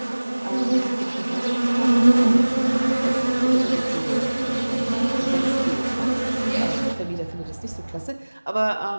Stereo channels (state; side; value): inverted; both; correlation -1.00